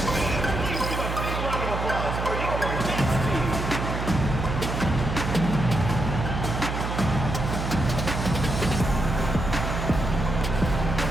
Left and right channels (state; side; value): noise; right; hum, 3 dB below the sound